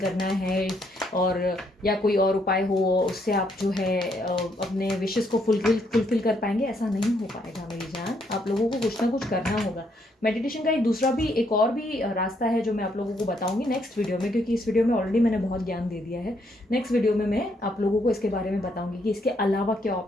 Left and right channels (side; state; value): both; normal; correlation 0.73